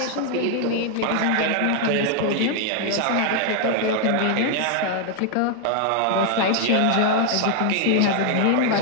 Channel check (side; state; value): both; different; correlation 0.00